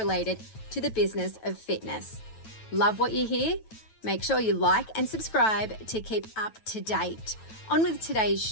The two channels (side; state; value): right; late; 9.1 ms